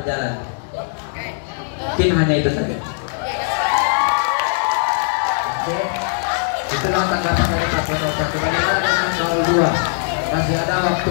Mungkin hanya itu saja. Oke, itulah tanggapan dari paslon 01. Bagaimana dengan 02? Masih ada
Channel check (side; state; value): right; silent; digital silence